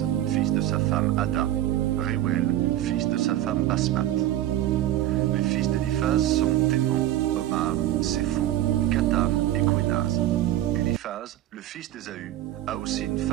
fils de sa femme Ada. Réouel, fils de sa femme Basmat. Les fils d'Éliphaz sont Témon, Omar, Sépho, Gatam et Quénaz. Éliphaz, le fils d'Ésaü, a aussi une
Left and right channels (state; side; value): quieter; left; 13.4 dB